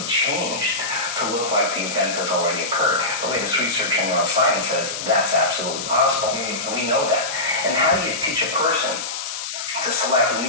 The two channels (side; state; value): left; noise; hiss, 6 dB below the sound